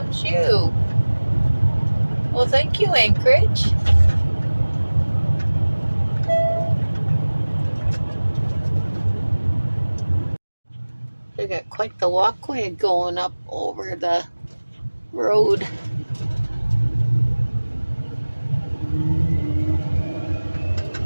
you. Well, thank you, Anchorage. They got quite the walkway going up over the road.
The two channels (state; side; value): inverted; both; correlation -1.00